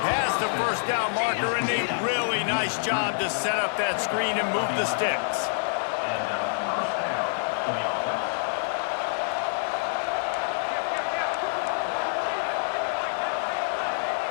past the first down marker, and a really nice job to set up that screen and move the sticks.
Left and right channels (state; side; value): silent; right; digital silence